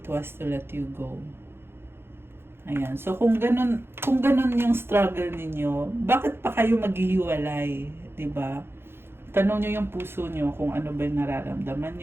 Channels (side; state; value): left; late; 0.11 ms